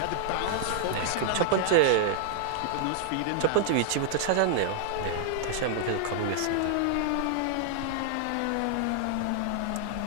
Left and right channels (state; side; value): different; both; correlation 0.00